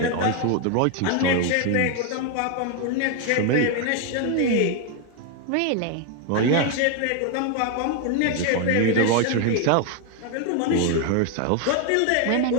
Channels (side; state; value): both; different; correlation 0.01